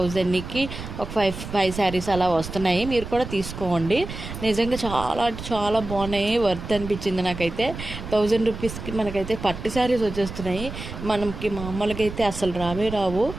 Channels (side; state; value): right; noise; rumble, 9 dB below the sound